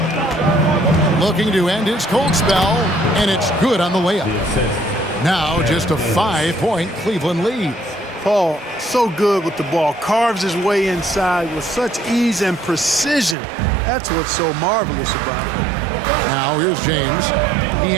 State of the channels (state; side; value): drops out; left; at 13.4 s